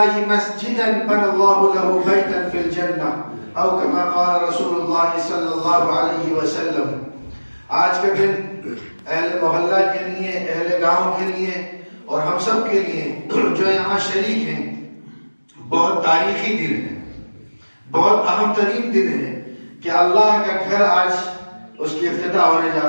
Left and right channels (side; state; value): both; inverted; correlation -1.00